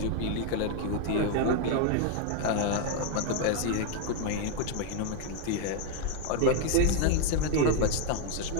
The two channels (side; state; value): both; different; correlation 0.01